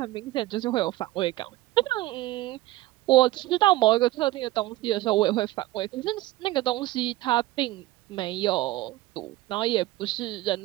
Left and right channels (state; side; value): quieter; left; 17.5 dB